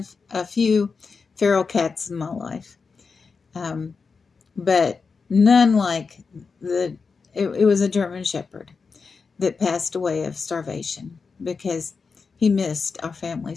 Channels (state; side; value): quieter; right; 5.0 dB